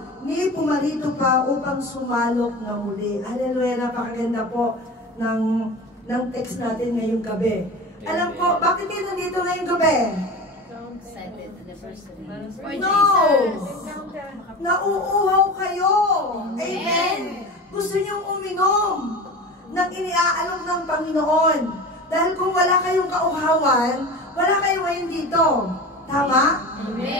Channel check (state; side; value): normal; both; correlation 0.32